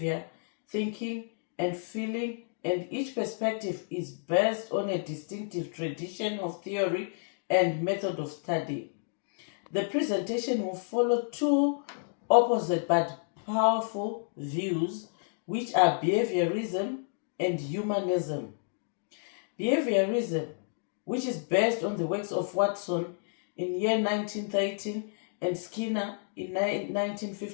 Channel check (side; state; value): right; silent; digital silence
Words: thinking, and feeling, and each perspective is based on a distinctive tradition of theory and method of study. The presentation will follow two opposite but powerful views, which are behaviorism and humanism. Behaviorism, which is based on the works of Watson in year 1913 and Skinner in